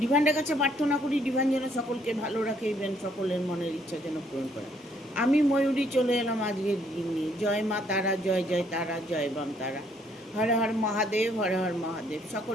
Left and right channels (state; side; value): normal; both; correlation 0.68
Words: ডিভাইনের কাছে প্রার্থনা করি ডিভাইন যেন সকলকে ভালো রাখে, ইভেন সকলের মনের ইচ্ছা যেন পূরণ করে। আমি ময়ূরী চলে এলাম আজকের দিন নিয়ে। জয় মা তারা, জয় জয় তারা, জয় বাম তারা। হর হর মহাদেব, হর হর মহাদেব।